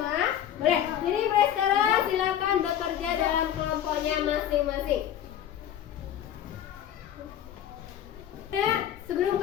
Boleh. Jadi mulai sekarang silakan bekerja dalam kelompoknya masing-masing. Nah, sebelum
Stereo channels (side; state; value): right; quieter; 10.4 dB